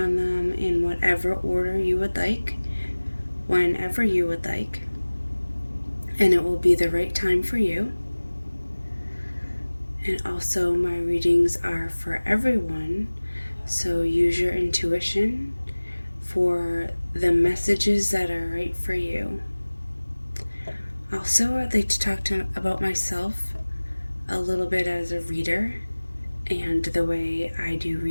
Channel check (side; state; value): both; inverted; correlation -1.00